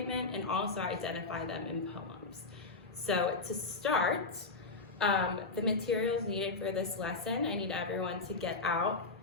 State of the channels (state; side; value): quieter; right; 3.8 dB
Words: and also identify them in poems. So to start, the materials needed for this lesson, I need everyone to get out